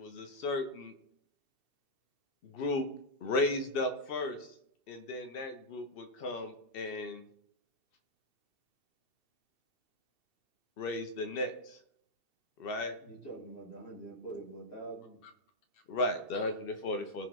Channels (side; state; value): right; late; 2.7 ms